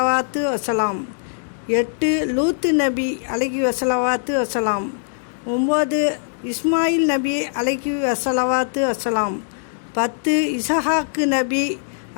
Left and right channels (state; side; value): silent; right; digital silence